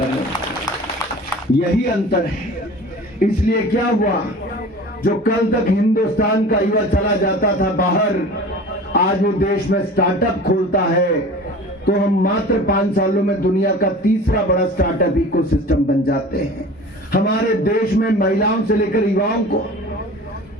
यही अंतर है। इसलिए क्या हुआ, जो कल तक हिंदुस्तान का युवा चला जाता था बाहर, आज वो देश में स्टार्टअप खोलता है, तो हम मात्र 5 सालों में दुनिया का तीसरा बड़ा स्टार्टअप इकोसिस्टम बन जाते हैं। हमारे देश में महिलाओं से लेकर युवाओं को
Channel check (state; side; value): normal; both; correlation 0.40